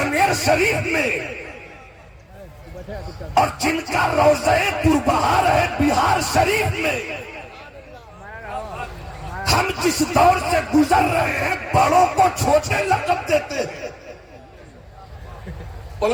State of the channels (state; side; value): identical; both; correlation 1.00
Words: شریف میں اور جن کا روضہ پربہار ہے بہار شریف میں، ہم جس دور سے گزر رہے ہیں بڑوں کو چھوٹے لقب دیتے ہیں،